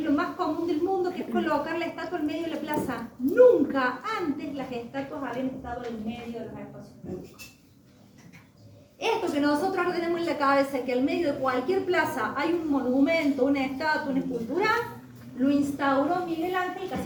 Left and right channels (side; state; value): both; identical; correlation 1.00